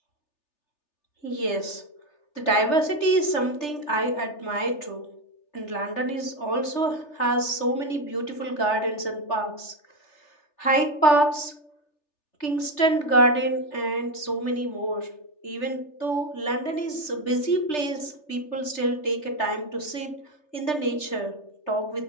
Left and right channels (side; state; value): right; late; 3.4 ms